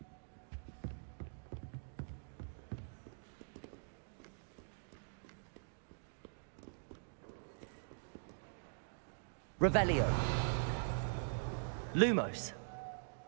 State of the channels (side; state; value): left; silent; digital silence